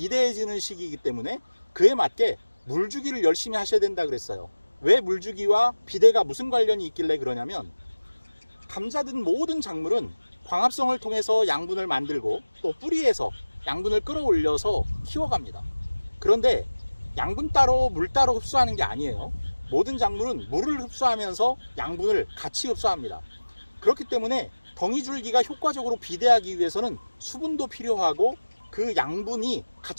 시기이기 때문에 그에 맞게 물주기를 열심히 하셔야 된다 그랬어요. 왜 물주기와 비대가 무슨 관련이 있길래 그러냐면, 감자든 모든 작물은 광합성을 통해서 양분을 만들고 또 뿌리에서 양분을 끌어올려서 키워갑니다. 그런데 양분 따로 물 따로 흡수하는 게 아니에요. 모든 작물은 물을 흡수하면서 양분을 같이 흡수합니다. 그렇기 때문에 덩이줄기가 효과적으로 비대하기 위해서는 수분도 필요하고 그 양분이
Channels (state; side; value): inverted; both; correlation -1.00